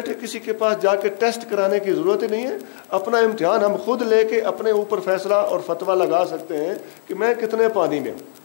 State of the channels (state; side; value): silent; right; 56 dB below the other